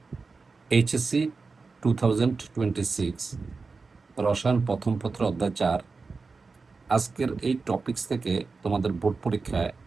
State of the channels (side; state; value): left; quieter; 4.3 dB